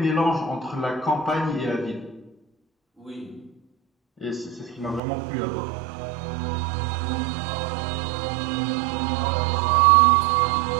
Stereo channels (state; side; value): drops out; left; at 5.0 s